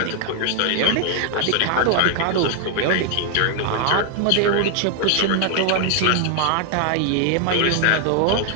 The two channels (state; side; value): different; both; correlation 0.00